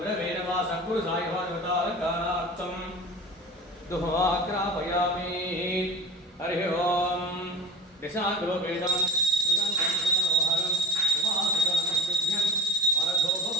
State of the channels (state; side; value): normal; both; correlation 0.35